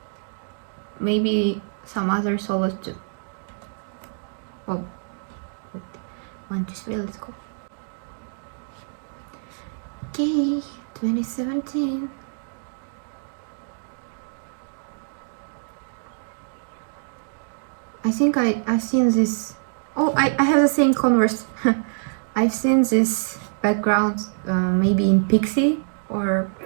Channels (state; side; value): silent; left; digital silence